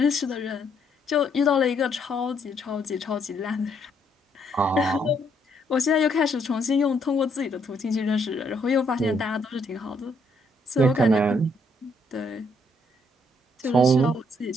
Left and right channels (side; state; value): both; normal; correlation 0.71